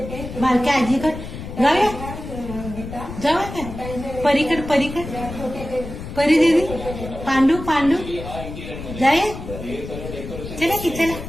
बारक्या आजीकडे जाऊया. जाऊया का परीकड, परीकड परी देवी, पांडू पांडू जाऊया. चला की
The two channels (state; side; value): noise; left; rumble, 10 dB below the sound